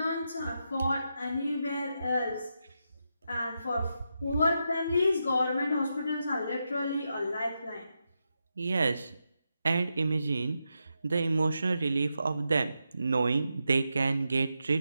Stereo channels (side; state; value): both; inverted; correlation -0.86